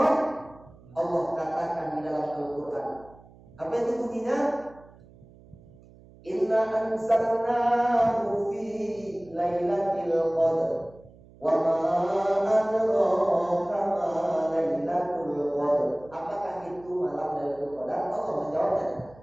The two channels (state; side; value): noise; right; hum, 24 dB below the sound